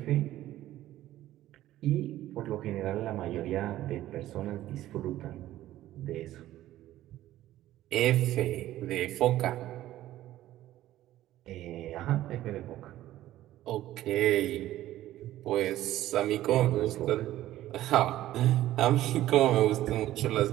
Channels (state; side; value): quieter; left; 14.2 dB